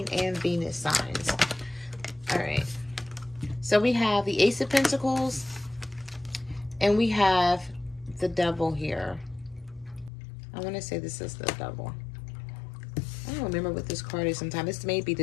and Venus signs. All right. So we have the Ace of Pentacles, and we have the Devil here. I want to say this is the Devil. I don't remember what this card is sometimes. This may be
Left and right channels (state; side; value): drops out; right; at 10.1 s